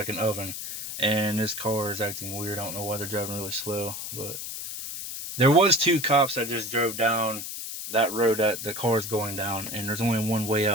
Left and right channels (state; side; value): noise; left; hiss, 7 dB below the sound